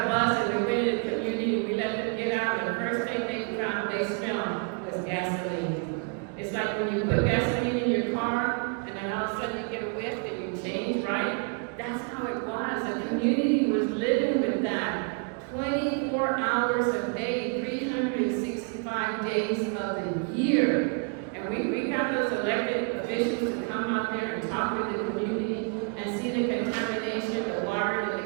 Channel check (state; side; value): quieter; left; 38.4 dB